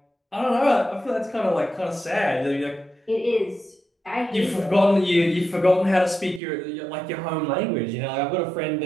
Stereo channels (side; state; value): left; drops out; at 6.4 s